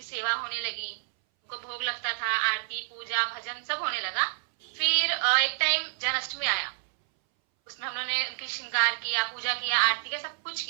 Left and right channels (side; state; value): left; silent; 59 dB below the other